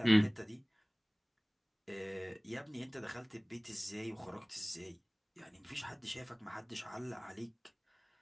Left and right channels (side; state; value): both; identical; correlation 1.00